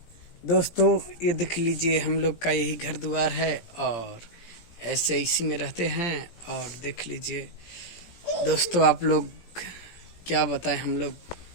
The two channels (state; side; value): late; right; 17 ms